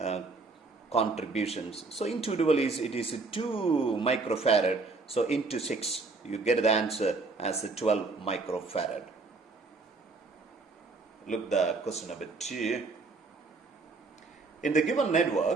contributions. So individual is, it is 2 microfarad. So into 6, you get the answer as 12 microfarad. Look the question number 2. In the given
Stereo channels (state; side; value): quieter; left; 3.8 dB